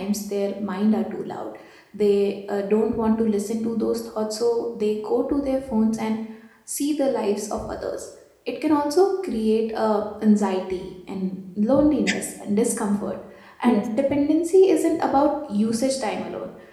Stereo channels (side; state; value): both; identical; correlation 1.00